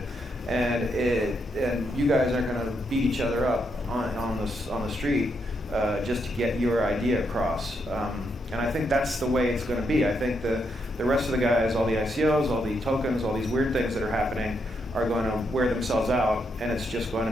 and you guys aren't going to beat each other up on the street just to get your idea across. And I think that's the way it's going to be. I think the rest of the guys, all the ICOs, all the tokens, all these weird things that are happening, are going to wear themselves out, and it's just going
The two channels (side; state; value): both; normal; correlation 0.79